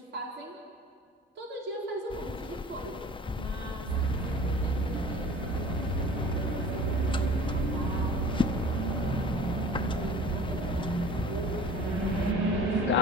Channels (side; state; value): both; normal; correlation 0.45